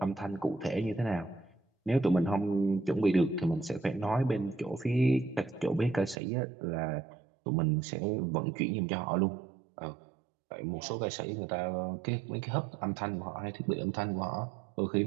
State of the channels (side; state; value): left; drops out; at 6.2 s